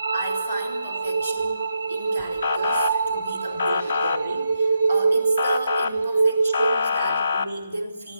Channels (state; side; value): inverted; both; correlation -0.83